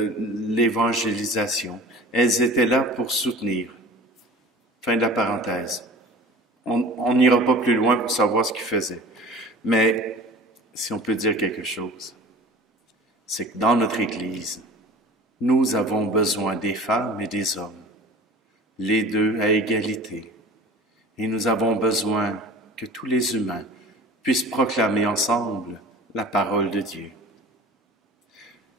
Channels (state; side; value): normal; both; correlation 0.41